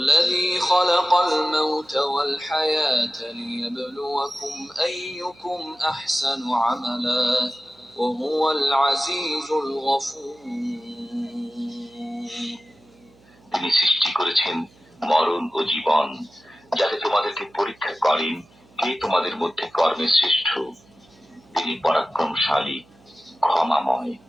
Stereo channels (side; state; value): right; noise; hum, 29 dB below the sound